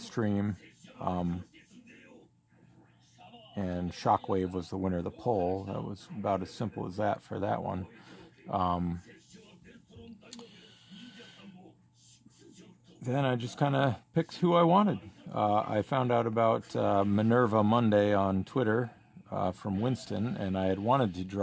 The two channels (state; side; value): identical; both; correlation 1.00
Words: And Shockwave was the winner of the poll. That was about as simple as that for that one. Then I just kind of picked who I wanted. I found out about Minerva Monday on Twitter from Winston, and I had wanted to